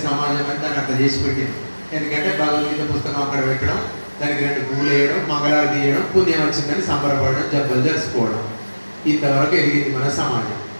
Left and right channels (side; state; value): both; inverted; correlation -1.00